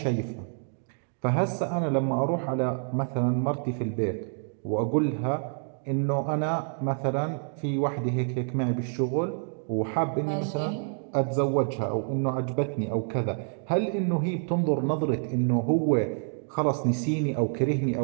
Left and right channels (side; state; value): left; silent; 60 dB below the other